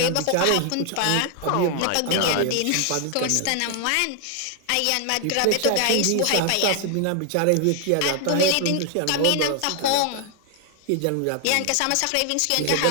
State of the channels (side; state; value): both; different; correlation 0.00